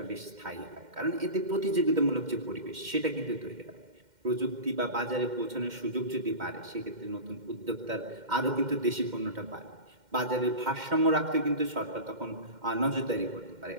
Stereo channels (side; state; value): left; late; 2.1 ms